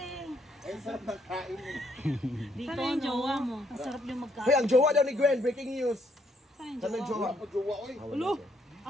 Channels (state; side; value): normal; both; correlation 0.72